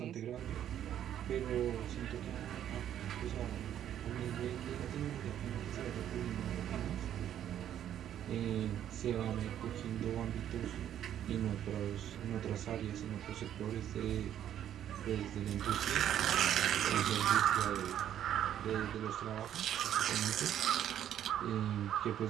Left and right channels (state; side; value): quieter; left; 10.6 dB